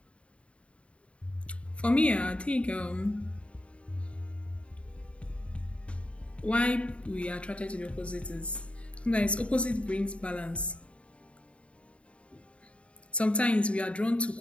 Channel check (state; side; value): late; right; 0.061 ms